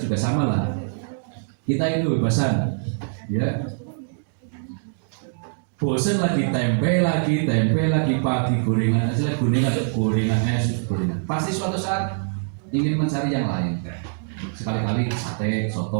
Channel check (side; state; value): left; silent; digital silence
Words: juga sama lah. Kita ini kebebasan, ya. Bosan lagi tempe lagi pagi gorengan es, gorengan. Pasti suatu saat ingin mencari yang lain. Sekali-kali sate,